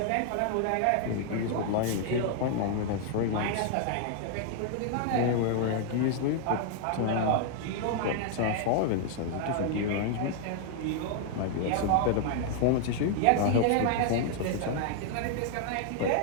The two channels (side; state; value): both; different; correlation 0.00